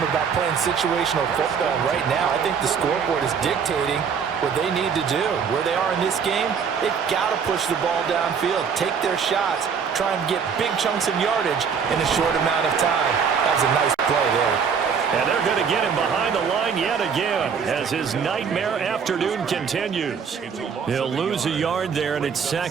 about playing situational football. Right now, I think the scoreboard is dictating what they need to do. Where they are in this game, they've got to push the ball downfield, take their shots, try and get big chunks of yardage in a short amount of time. That was a nice play there. And they're going to get him behind the line yet again as his nightmare afternoon continues. He'll lose a yard there, and it's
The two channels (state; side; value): quieter; left; 6.5 dB